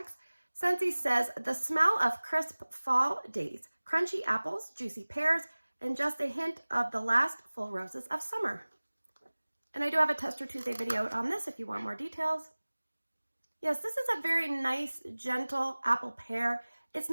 Scentsy says, the smell of crisp fall days, crunchy apples, juicy pears, and just a hint of the last full roses of summer. And I do have a Tester Tuesday video on this if you want more details. Yes, this is a very nice, gentle apple pear. It's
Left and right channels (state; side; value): inverted; both; correlation -1.00